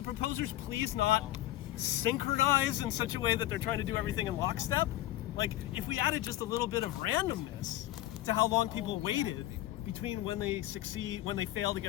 proposers please not synchronize in such a way that they're trying to do everything in lockstep? Like if we added just a little bit of randomness to how long people waited between when they succeed, when they fail to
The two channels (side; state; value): right; quieter; 14.8 dB